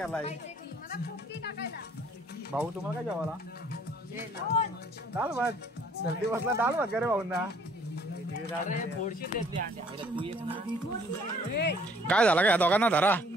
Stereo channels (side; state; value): both; normal; correlation 0.59